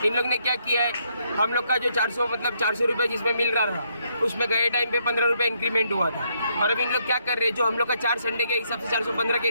इन लोग ने क्या किया है, हम लोग का जो 400 रुपये जिसमें मिल रहा था, उसमें गए टाइम पे 15 रुपये इंक्रीमेंट हुआ था। और अब इन लोग क्या कर रहे हैं, जो हम लोग का 4 संडे के हिसाब से 415 के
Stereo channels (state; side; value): inverted; both; correlation -0.74